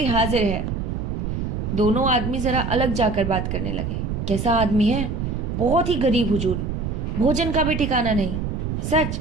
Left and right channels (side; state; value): right; noise; rumble, 3 dB below the sound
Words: हाजिर है। दोनों आदमी जरा अलग जाकर बात करने लगे। कैसा आदमी है? बहुत ही गरीब हुजूर, भोजन का भी ठिकाना नहीं। सच?